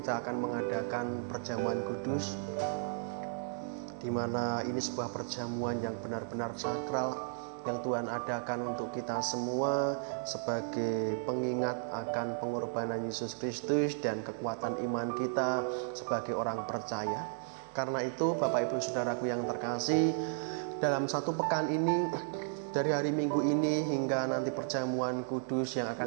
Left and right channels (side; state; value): left; silent; digital silence